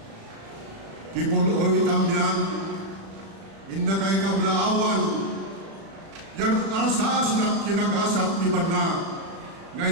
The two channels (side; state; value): left; late; 36 ms